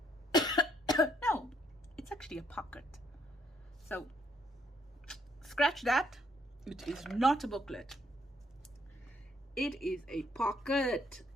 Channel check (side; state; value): both; normal; correlation 0.70